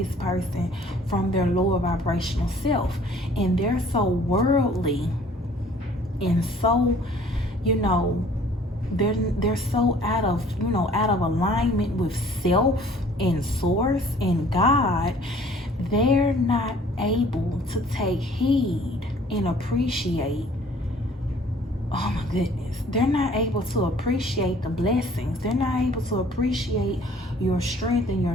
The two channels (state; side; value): normal; both; correlation 0.54